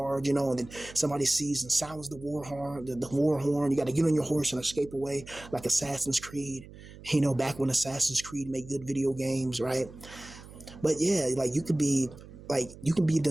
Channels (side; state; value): right; noise; hum, 17 dB below the sound